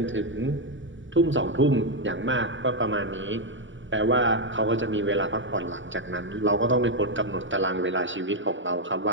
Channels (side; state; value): left; late; 0.55 ms